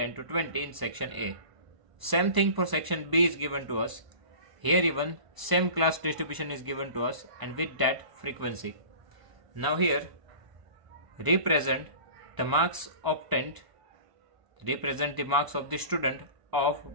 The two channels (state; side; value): late; left; 1.0 ms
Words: to 20 in section A. Same thing for section B is given to us. Here even same class distribution is given to us and with that frequency. Now here represent the marks obtained, represent the marks of the student of